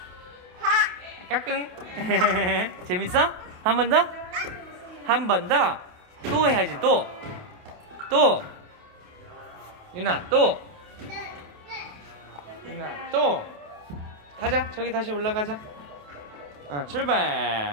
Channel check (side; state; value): left; late; 28 ms